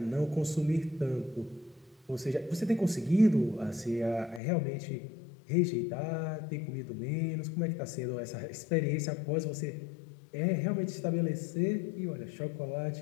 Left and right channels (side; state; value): right; drops out; at 4.4 s